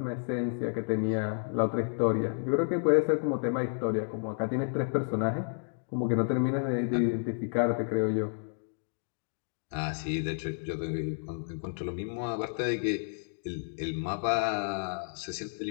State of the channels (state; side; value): silent; right; digital silence